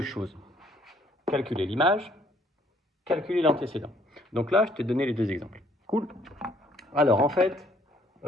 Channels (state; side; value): normal; both; correlation 0.63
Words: choses. Calculer l'image, calculer l'antécédent. Donc là, je t'ai donné les deux exemples. Cool. Alors, en fait,